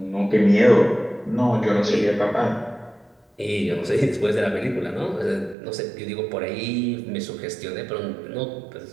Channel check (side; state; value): left; drops out; at 5.6 s